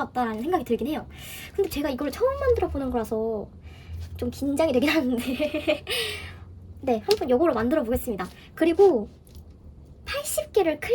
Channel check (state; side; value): identical; both; correlation 1.00